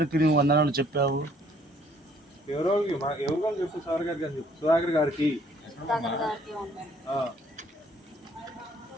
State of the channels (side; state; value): both; normal; correlation 0.62